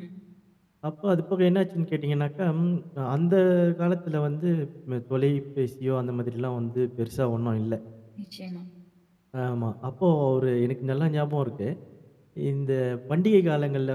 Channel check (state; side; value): identical; both; correlation 1.00